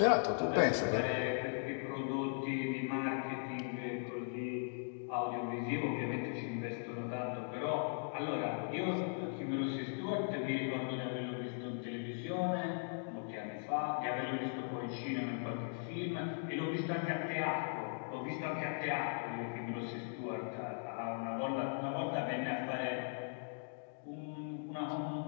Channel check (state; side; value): silent; right; digital silence